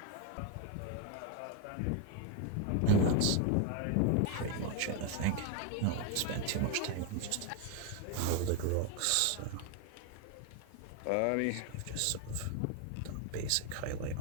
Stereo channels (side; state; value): both; different; correlation 0.01